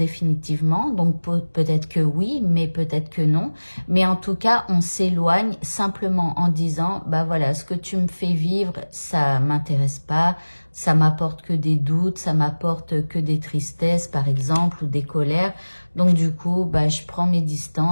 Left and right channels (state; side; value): inverted; both; correlation -1.00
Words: donc peut-être que oui, mais peut-être que non. Mais en tout cas, on s'éloigne simplement en disant, voilà, ce que tu me fais vivre, ça m'intéresse pas, ça m'apporte que des doutes, ça m'apporte que des tristesses, par exemple, ou des colères. Donc du coup, je prends mes